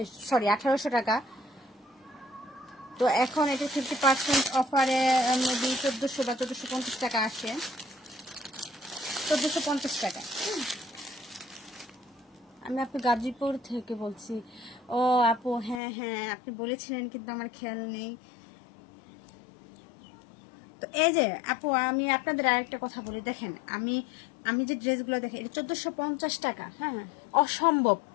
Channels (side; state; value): right; drops out; at 15.8 s